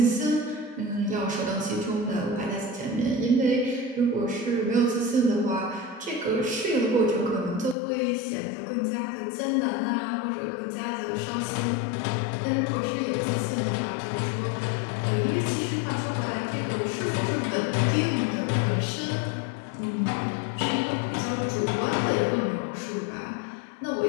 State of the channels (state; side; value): drops out; right; at 7.8 s